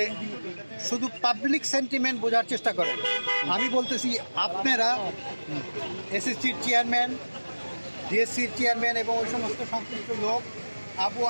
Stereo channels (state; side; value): inverted; both; correlation -1.00